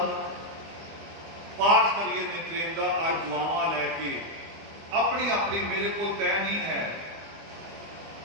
पाठ करिए नितनेम का। अज दुआवां लैके अपनी अपनी, मेरे को तय नहीं है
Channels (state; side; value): late; left; 25 ms